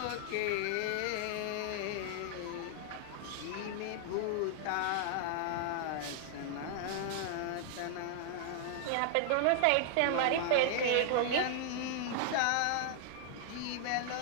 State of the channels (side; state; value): both; different; correlation 0.00